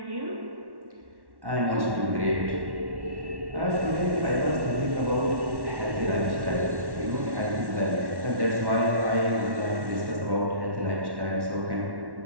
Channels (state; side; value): late; left; 1.1 ms